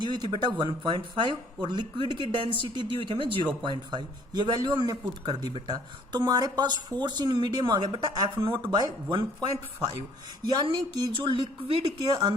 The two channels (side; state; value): both; normal; correlation 0.59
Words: हुई थी बेटा 1.5 और लिक्विड की डेंसिटी दी हुई थी हमें 0.5। ये वैल्यू हमने पुट कर दी बेटा। तो हमारे पास फोर्स इन मीडियम आ गया बेटा F0/1.5, यानी कि जो लिक्विड के